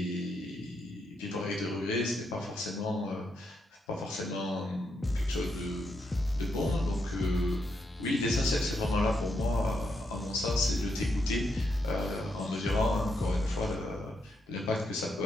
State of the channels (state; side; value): normal; both; correlation 0.81